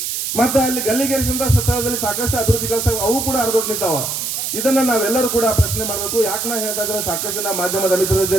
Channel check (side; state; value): right; noise; hiss, 3 dB below the sound